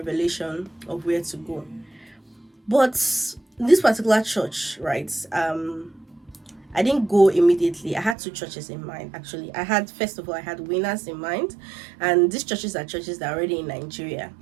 of where to go. But this particular church, right, I didn't go immediately. I had 2 churches in mind, actually. First of all, I had Winners in mind, and these churches are churches that are already in Nigeria.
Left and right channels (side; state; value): left; drops out; at 8.2 s